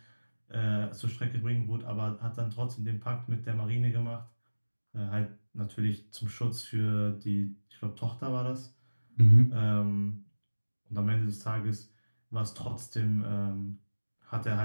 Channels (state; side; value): inverted; both; correlation -1.00